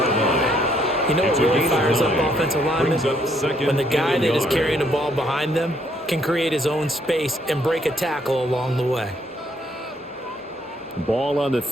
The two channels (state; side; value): normal; both; correlation 0.69